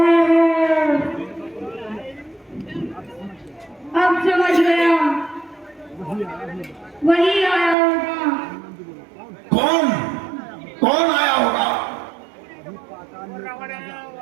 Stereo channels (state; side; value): drops out; left; at 7.8 s